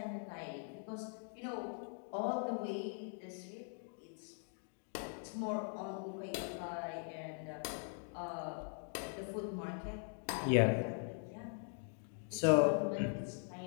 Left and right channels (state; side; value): silent; right; 50 dB below the other